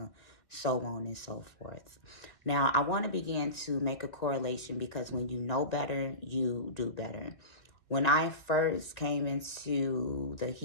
so on and so forth. Now, I want to begin to make a correlation, because when you know better, you do better. When I first came into the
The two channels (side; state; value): right; late; 2.2 ms